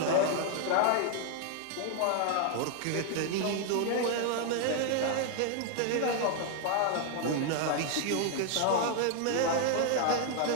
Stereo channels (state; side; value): different; both; correlation 0.00